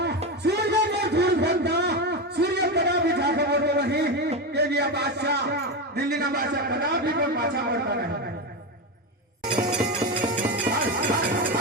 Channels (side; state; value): both; normal; correlation 0.15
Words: सूर्य में धूल भरता सूर्य कदा भी जाके बोलो वही के लिए बादशाह दिल्ली का बादशाह कदा भी कोई पाछा पड़ता नहीं